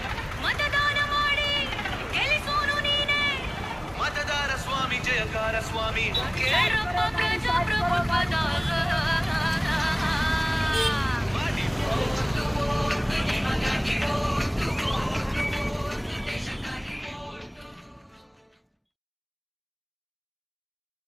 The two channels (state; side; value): identical; both; correlation 1.00